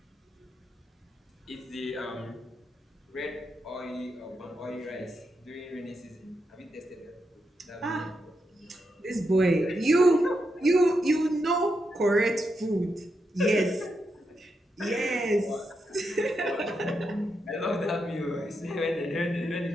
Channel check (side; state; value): both; normal; correlation 0.84